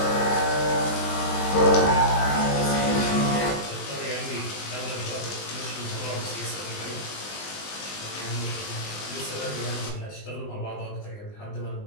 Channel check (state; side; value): late; right; 20 ms